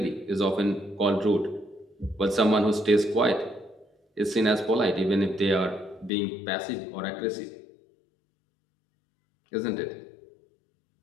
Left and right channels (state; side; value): drops out; right; at 6.1 s